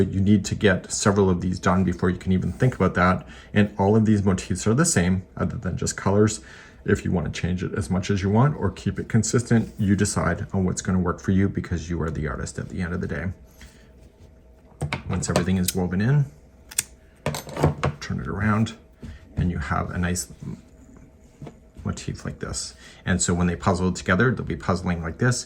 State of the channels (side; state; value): both; identical; correlation 1.00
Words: need to get several of these done before you can even think about that. And all of these motifs are the same other than just colors. If you want to change it as much as you want or keep it consistent, you decide on what's going to work for you, because you are the artist at the end of the day. Once everything is woven in, turn it around, and you have a nice motif like this. And so when they puzzle together, they'll be puzzling like this.